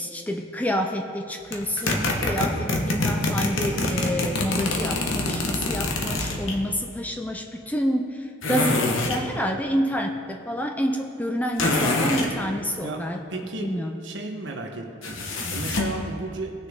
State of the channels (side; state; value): both; normal; correlation 0.57